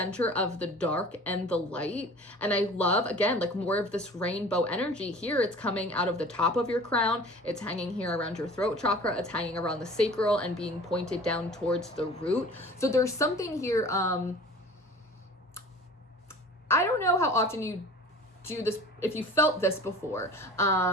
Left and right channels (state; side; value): normal; both; correlation 0.43